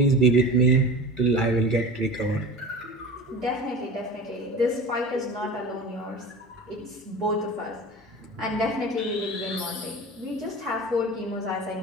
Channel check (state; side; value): normal; both; correlation 0.34